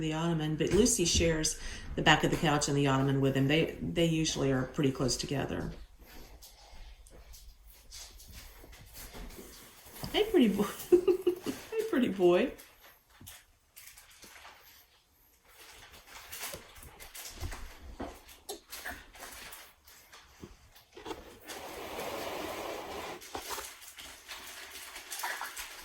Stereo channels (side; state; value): both; identical; correlation 1.00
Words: ottoman, but Lucy shares the back of the couch and the ottoman with him. They usually are pretty close together. Hey, pretty boy. Hey, pretty boy.